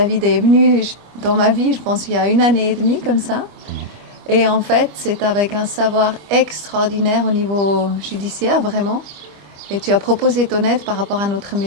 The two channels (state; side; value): late; left; 25 ms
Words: est venu dans ma vie, je pense, il y a 1 année et demie comme ça. Et en fait c'est avec un savoir extraordinaire au niveau judiciaire, vraiment. Et tu as proposé ton aide par rapport à notre